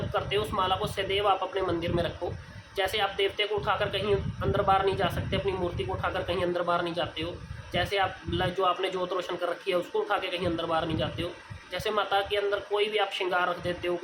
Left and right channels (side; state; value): both; identical; correlation 1.00